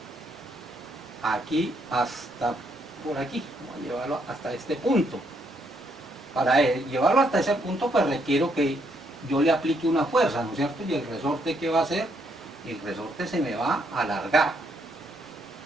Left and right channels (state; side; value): normal; both; correlation 0.73